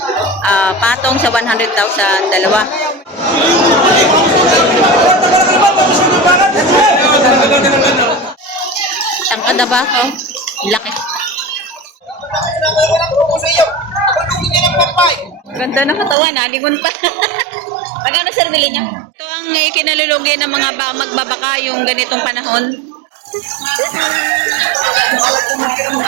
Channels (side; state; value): left; drops out; at 16.2 s